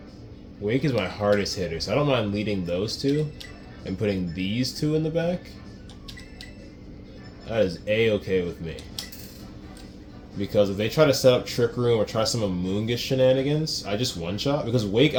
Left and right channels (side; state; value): both; identical; correlation 1.00